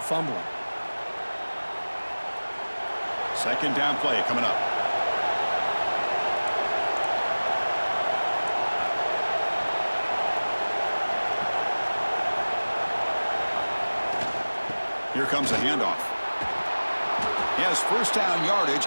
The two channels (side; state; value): both; inverted; correlation -1.00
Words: fumbling. Second down play coming up. Here comes a handoff. He has first down yardage